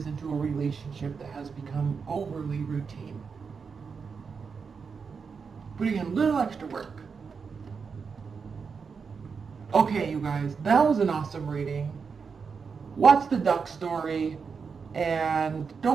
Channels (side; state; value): left; quieter; 5.6 dB